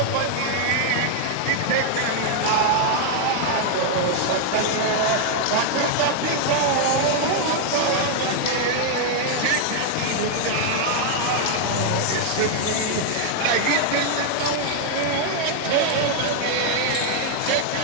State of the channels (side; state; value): both; different; correlation 0.00